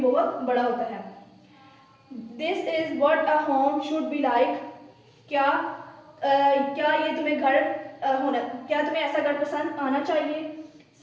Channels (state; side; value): identical; both; correlation 1.00